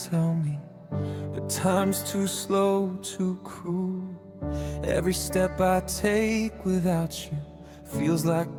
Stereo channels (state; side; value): identical; both; correlation 1.00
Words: tell me, but time's too slow, too cruel. Every step I take without you feels like